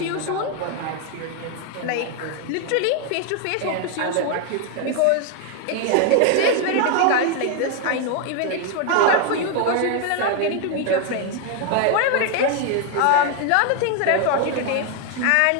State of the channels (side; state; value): both; different; correlation 0.00